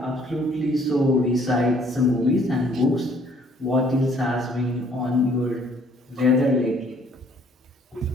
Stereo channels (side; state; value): both; normal; correlation 0.60